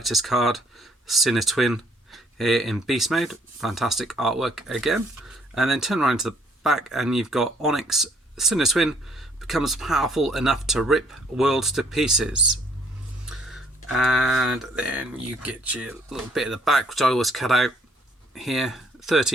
card, Sinnertwin, here in beast mode. Fantastic artwork again. And then turn around to the back and you've got Onyx. Sinnertwin becomes powerful enough to rip worlds to pieces. And then you get your little bit at the back, which I always cut out here.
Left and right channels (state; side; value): normal; both; correlation 0.65